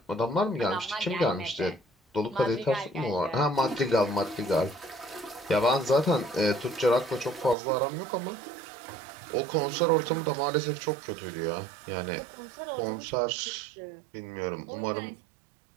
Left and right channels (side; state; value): left; drops out; at 7.6 s